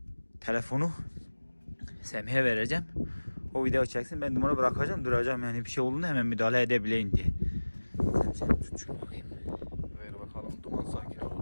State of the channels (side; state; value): both; inverted; correlation -1.00